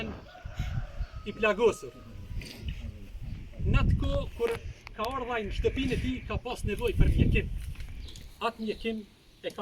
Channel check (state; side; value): identical; both; correlation 1.00